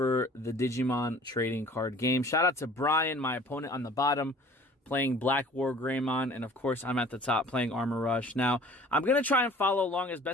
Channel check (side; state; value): both; normal; correlation 0.49